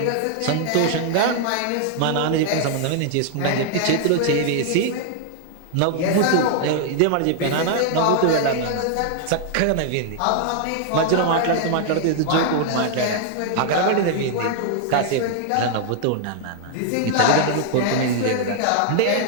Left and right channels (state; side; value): different; both; correlation 0.00